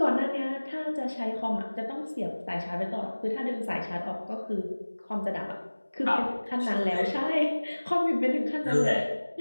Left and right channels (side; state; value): both; inverted; correlation -1.00